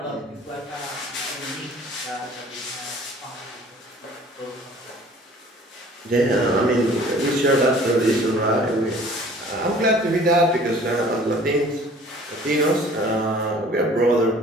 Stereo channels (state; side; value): normal; both; correlation 0.50